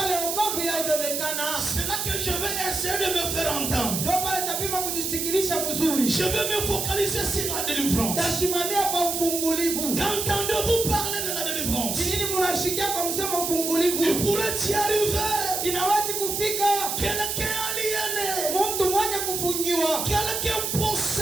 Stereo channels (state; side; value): noise; right; hiss, 2 dB below the sound